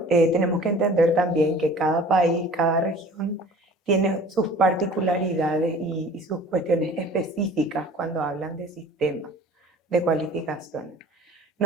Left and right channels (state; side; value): normal; both; correlation 0.46